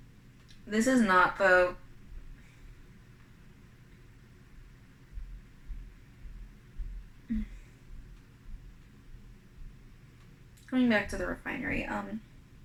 not the. Going back to the refinery,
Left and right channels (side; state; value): both; identical; correlation 1.00